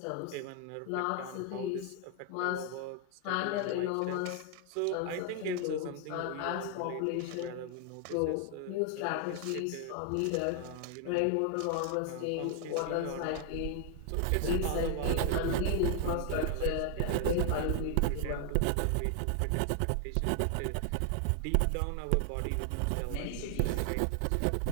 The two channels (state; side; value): different; both; correlation 0.00